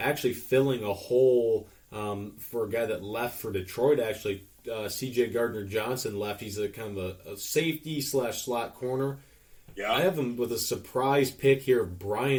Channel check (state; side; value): identical; both; correlation 1.00